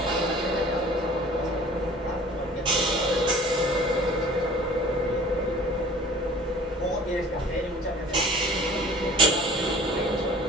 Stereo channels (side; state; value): both; normal; correlation 0.47